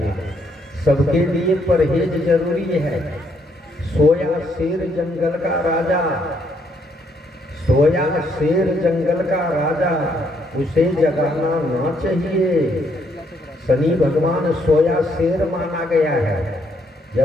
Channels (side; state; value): both; normal; correlation 0.72